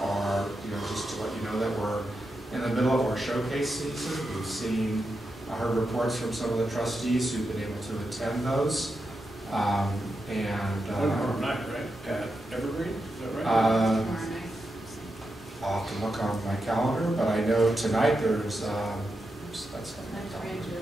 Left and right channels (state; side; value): normal; both; correlation 0.87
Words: are, just to let you know that we're in the middle of our showcase season. We've seen, I heard reports from some of the trustees who've been able to attend those. Tomorrow night, right? At Evergreen, is that right? I'll have to look on my calendar, but I know tonight there's,